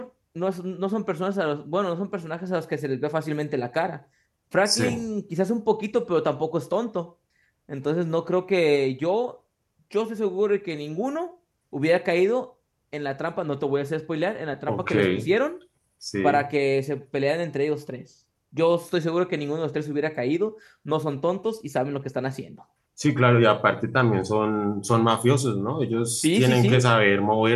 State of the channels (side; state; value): both; identical; correlation 1.00